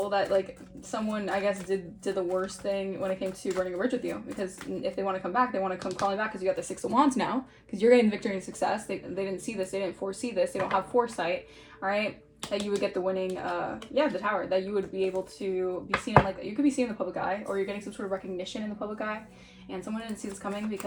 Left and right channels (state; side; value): identical; both; correlation 1.00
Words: that like someone, I guess, did the worst thing when it came to burning a bridge with you, because if they want to come back, they want to come crawling back because you got the Six of Wands now, because you're getting victory and success. They didn't see this, they didn't foresee this, they don't have foresight, all right, that you would get the winning, the Tower, that you would be able to be seen in like, you could be seen in the public eye, or you're getting some sort of recognition in the public eye, and someone didn't see this coming